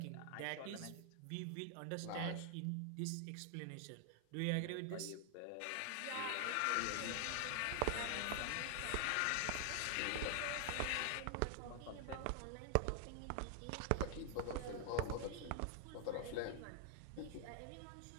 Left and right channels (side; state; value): both; different; correlation 0.00